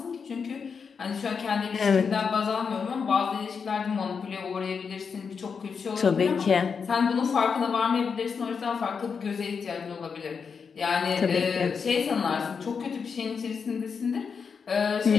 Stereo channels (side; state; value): right; quieter; 5.9 dB